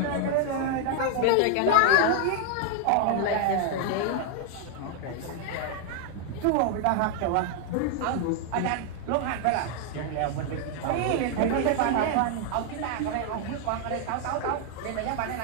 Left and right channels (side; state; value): both; different; correlation 0.00